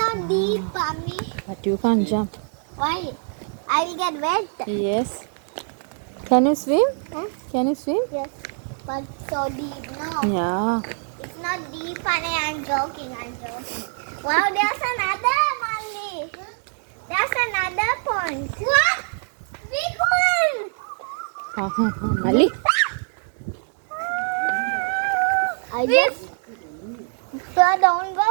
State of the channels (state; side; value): silent; left; 63 dB below the other